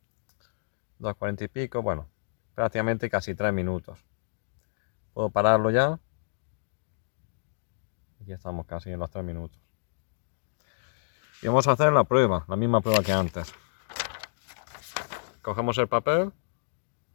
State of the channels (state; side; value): silent; right; digital silence